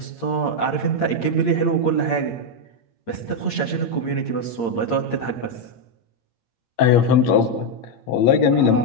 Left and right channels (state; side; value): late; right; 8.7 ms